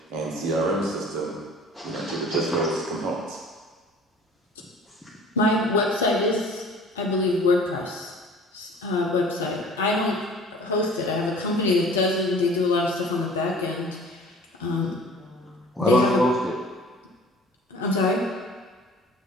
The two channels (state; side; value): normal; both; correlation 0.47